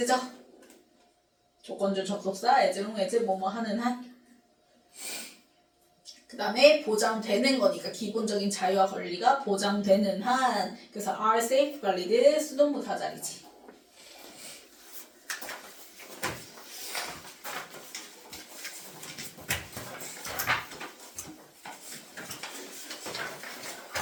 조건절 접속사 as long as 뭐뭐 하는 한. 그 다음에 보장되는 거니까 기본적인 자유와 권리가 보장되는 한. 그래서 are safeguarded 수동부사 자리지.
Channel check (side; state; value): both; identical; correlation 1.00